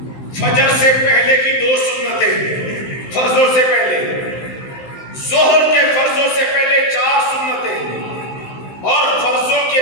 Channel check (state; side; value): late; right; 15 ms